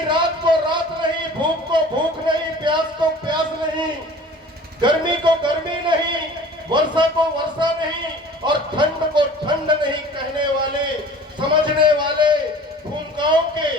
रात को रात नहीं, भूख को भूख नहीं, प्यास को प्यास नहीं, गर्मी को गर्मी नहीं, वर्षा को वर्षा नहीं और ठंड को ठंड नहीं कहने वाले, समझने वाले भूमिकाओं के,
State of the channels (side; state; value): both; normal; correlation 0.45